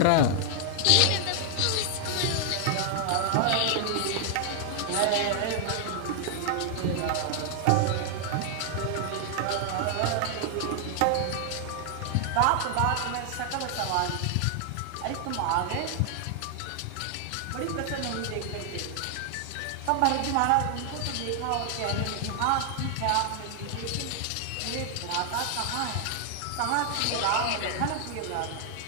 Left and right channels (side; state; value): both; different; correlation 0.00